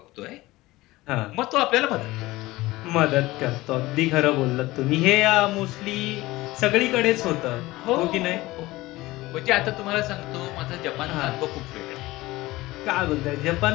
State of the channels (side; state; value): right; quieter; 19.0 dB